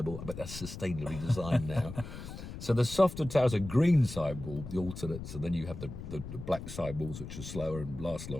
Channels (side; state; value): left; noise; rumble, 10 dB below the sound